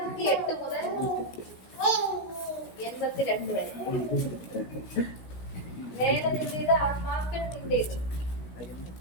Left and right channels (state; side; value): late; right; 16 ms